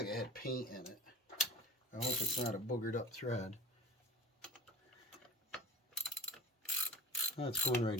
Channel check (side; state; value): both; normal; correlation 0.39